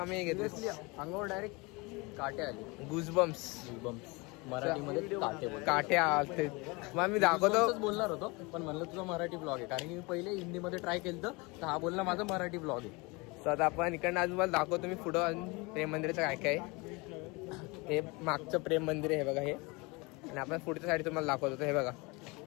घेतलं अंगावर डायरेक्ट काटे आले. गुजबम्स. मराठीमध्ये काटे आलते. मग मी दाखवतो बोलणार होतो पण म्हणलं तुझा मराठी ब्लॉग आहे कारण की मी पहिले हिंदीमध्ये ट्राय केलं तर हा बोलला माझा मराठी ब्लॉग आहे. तर आता आपण इकडनं अजून मला दाखवतो मी पुढं अजून प्रेम मंदिराचं काय काय. हे मागचं प्रेम मंदिर आहे हे बघा हे. आणि आपण पुढच्या साईड तुम्हाला दाखवतो. हे बघा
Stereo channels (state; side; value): quieter; right; 26.4 dB